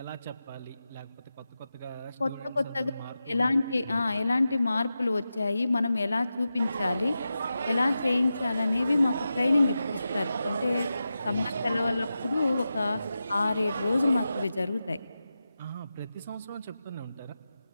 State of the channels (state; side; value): inverted; both; correlation -0.92